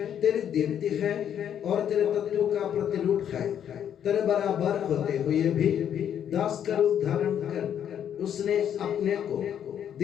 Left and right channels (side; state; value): right; quieter; 9.3 dB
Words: तेरी दीप्ति है और तेरे तत्व का प्रतिरूप है। तेरे बराबर होते हुए भी दास का रूप धारण कर उसने अपने को